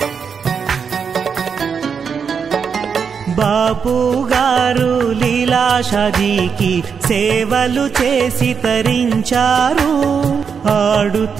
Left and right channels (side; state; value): left; quieter; 6.4 dB